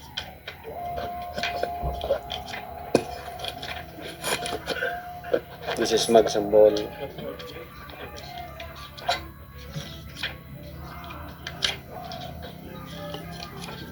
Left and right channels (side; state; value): both; identical; correlation 1.00